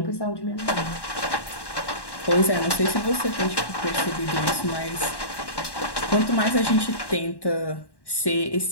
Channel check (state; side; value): late; right; 1.1 ms